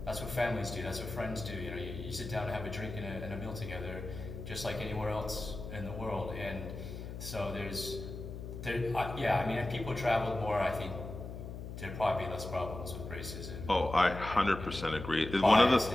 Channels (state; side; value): noise; left; hum, 9 dB below the sound